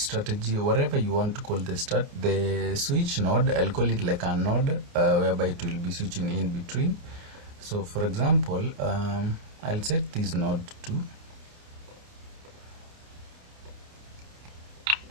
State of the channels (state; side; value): late; left; 29 ms